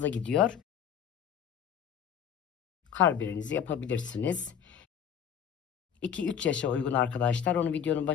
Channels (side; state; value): right; quieter; 8.4 dB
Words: gidiyor. Karbirenizi yapabilirsiniz. 2-3 yaşa uygun arkadaşlar. Onu videonun